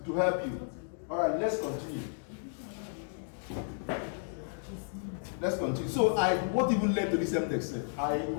will help you. All right. Let's continue. So what even led to this MDEX? I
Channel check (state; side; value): silent; right; digital silence